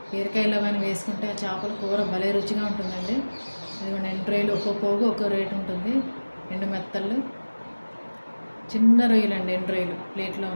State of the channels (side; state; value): both; inverted; correlation -1.00